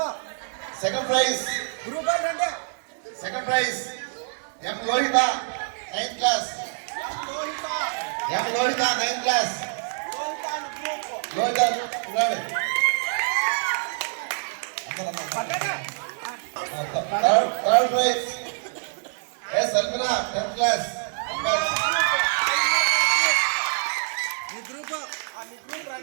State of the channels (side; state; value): left; silent; digital silence